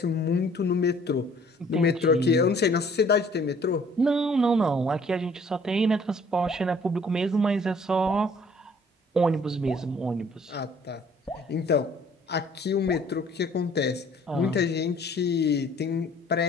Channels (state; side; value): normal; both; correlation 0.56